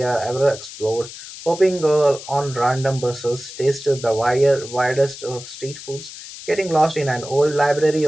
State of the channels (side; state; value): left; noise; hiss, 13 dB below the sound